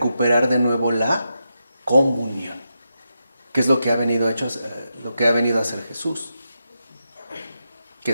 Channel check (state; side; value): inverted; both; correlation -0.87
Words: de nuevo la comunión, que es lo que ha venido a hacer Jesús, que